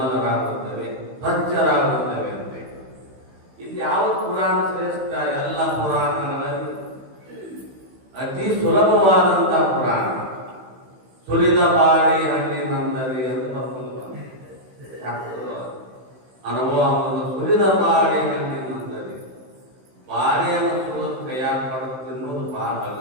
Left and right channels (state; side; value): late; left; 15 ms